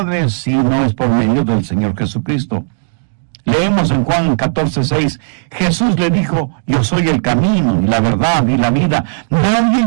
si no es por medio del Señor Jesucristo. Leemos en Juan 14:6, Jesús le dijo, yo soy el camino y la verdad y la vida. Nadie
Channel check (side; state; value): left; silent; digital silence